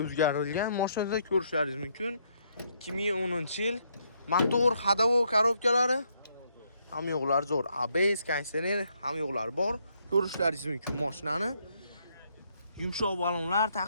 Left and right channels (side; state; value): both; inverted; correlation -0.73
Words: o'zgartirilgan. Mashinada ko'rishlaringiz mumkin. 2010-yil. Motor, ходовой korobkalari ham yo'qlar zo'r. ABS konditsioner ham yo'qlar bor. Ko'rishlaringiz mumkin mashinani. Yumshoq balonlar